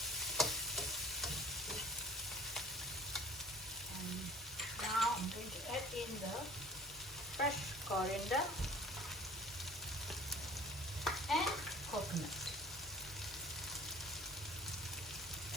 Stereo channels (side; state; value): both; normal; correlation 0.48